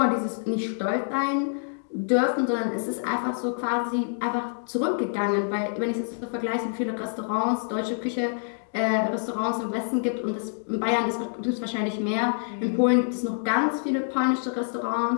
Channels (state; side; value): silent; right; digital silence